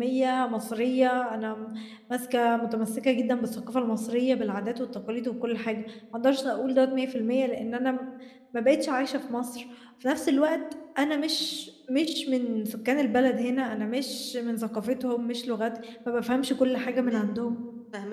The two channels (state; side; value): identical; both; correlation 1.00